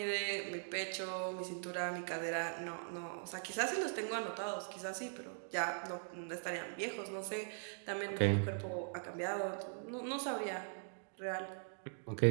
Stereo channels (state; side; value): silent; left; digital silence